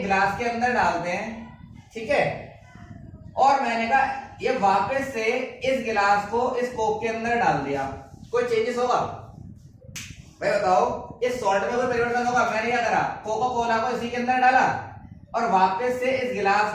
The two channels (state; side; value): identical; both; correlation 1.00